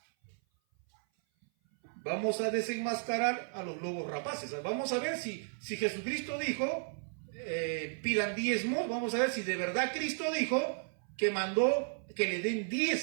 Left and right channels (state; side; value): silent; left; 55 dB below the other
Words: Vamos a desenmascarar a los lobos rapaces. Vamos a ver si Jesucristo dijo, pidan diezmos. Vamos a ver si de verdad Cristo dijo que mandó que le den